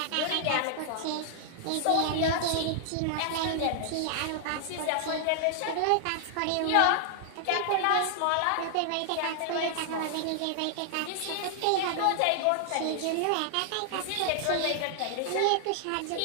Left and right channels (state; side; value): different; both; correlation -0.01